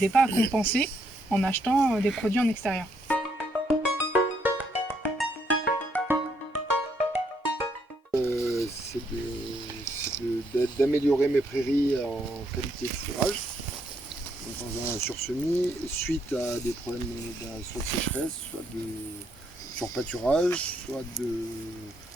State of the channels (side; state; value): both; normal; correlation 0.73